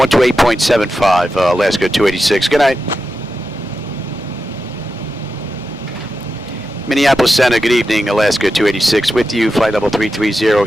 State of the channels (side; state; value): right; noise; hum, 27 dB below the sound